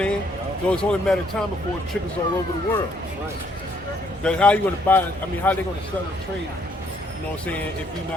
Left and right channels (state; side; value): normal; both; correlation 0.68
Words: So it's only a matter of time before it trickles all over the world. Right. Because how are you going to buy? I mean, how are they going to sell and trade? You know what I'm saying? If you're